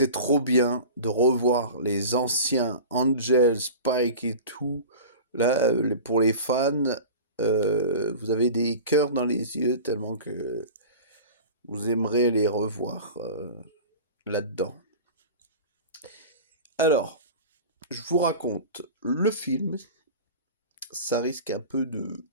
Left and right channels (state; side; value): inverted; both; correlation -0.35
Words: trop bien de revoir les anciens Angel, Spike et tout. Là, pour les fans, vous avez des cœurs dans les yeux tellement que vous aimerez les revoir là-dedans. Alors, je vous raconte le film. Ça risque un peu de